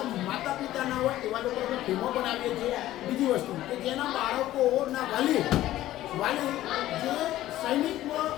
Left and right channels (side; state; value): right; quieter; 14.5 dB